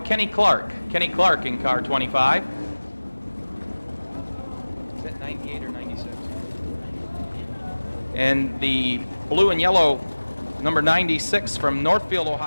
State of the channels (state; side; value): inverted; both; correlation -1.00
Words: Clark. Kenny Clark in car 25. Is that 98 or 96? And the blue and yellow, number 96 from Northfield,